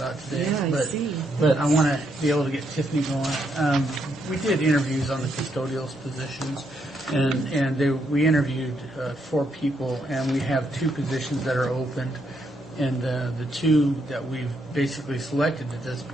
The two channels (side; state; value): both; normal; correlation 0.77